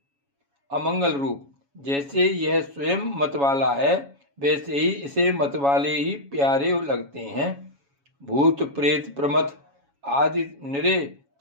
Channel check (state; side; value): late; left; 7.2 ms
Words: अमंगल रूप। जैसे यह स्वयं मतवाला है, वैसे ही इसे मतवाले ही प्यारे लगते हैं। भूत प्रेत प्रमथ आदि निरे